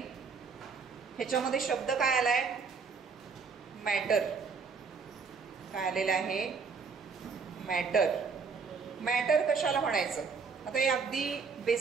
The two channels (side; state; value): left; quieter; 5.2 dB